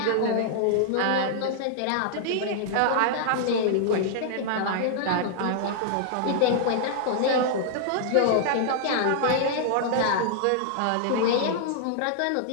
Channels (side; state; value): both; different; correlation -0.01